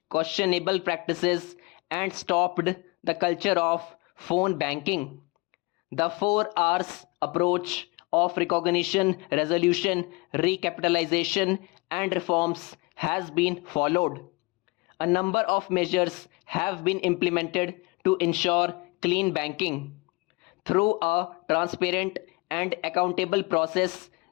questionable practices and stopped the culture of phone banking. The 4 Rs approach of recognition, resolution, recapitalization, and reforms has been followed. A number of measures have been implemented to ensure clean banking. Through a transparent and accountable process,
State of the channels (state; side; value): quieter; right; 26.2 dB